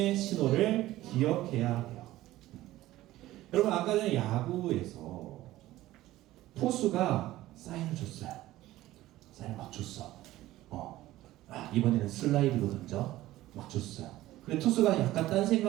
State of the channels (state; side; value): quieter; left; 15.9 dB